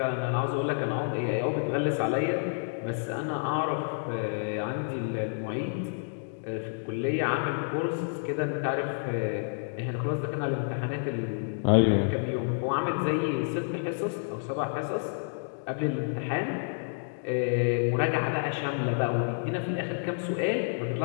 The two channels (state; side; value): silent; right; digital silence